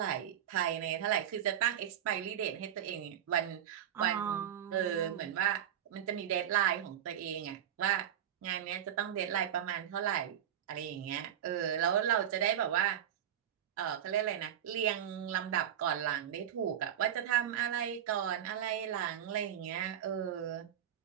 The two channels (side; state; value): left; quieter; 10.1 dB